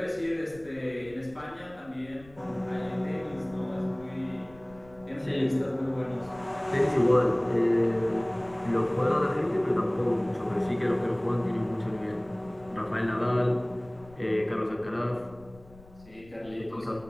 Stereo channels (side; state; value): left; noise; rumble, 23 dB below the sound